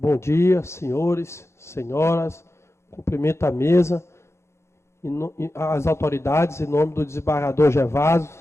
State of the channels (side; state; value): right; late; 0.13 ms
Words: dia, senhores, senhoras. Cumprimento a mesa, as autoridades, em nome do desembargador Gervásio